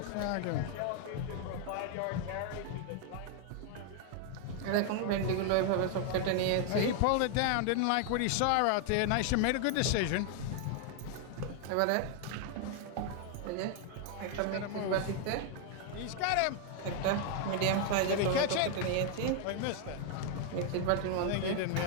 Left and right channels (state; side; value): different; both; correlation 0.00